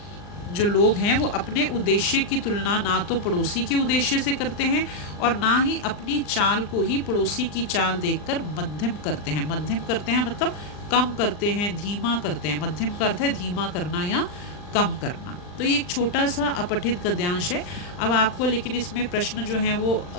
जो लोग हैं वो अपने उद्देश्य की तुलना ना तो पड़ोसी के उद्देश्य से करते हैं और ना ही अपनी चाल को ही पड़ोसी की चाल देखकर मध्यम करते हैं। मध्यम करते हैं मतलब कम करते हैं, धीमा करते हैं। मध्यम का अर्थ है धीमा करना या कम करना। तो ये एक छोटा सा अपठित गद्यांश है। अब आपको लेकिन इसमें प्रश्न जो हैं वो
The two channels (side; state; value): right; late; 39 ms